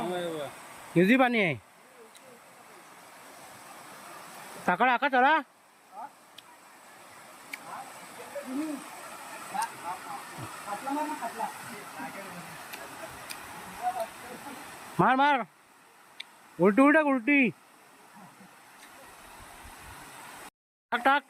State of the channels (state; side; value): identical; both; correlation 1.00